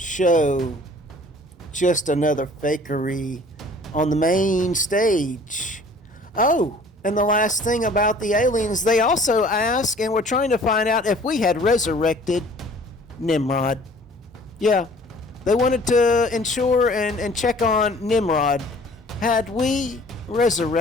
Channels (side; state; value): both; normal; correlation 0.51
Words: just another fakery on the main stage. Oh, and the last thing about the aliens, they also ask, and we're trying to find out if we had resurrected Nimrod. Yeah, they wanted to ensure and check on Nimrod. Had we